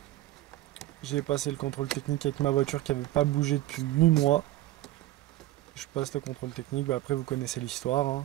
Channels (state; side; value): quieter; left; 15.6 dB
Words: J'ai passé le contrôle technique avec ma voiture qui n'avait pas bougé depuis 8 mois. Je passe le contrôle technique, bah après vous connaissez l'histoire, hein.